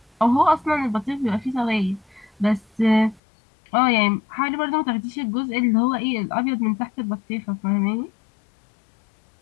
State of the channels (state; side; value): drops out; right; at 3.2 s